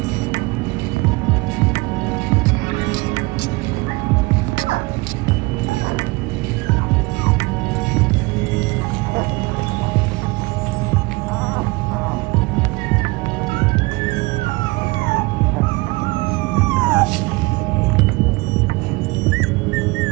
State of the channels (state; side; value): quieter; left; 24.3 dB